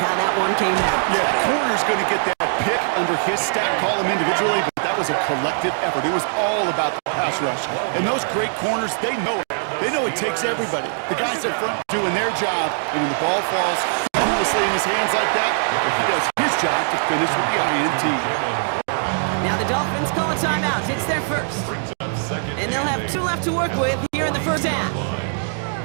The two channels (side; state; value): left; silent; digital silence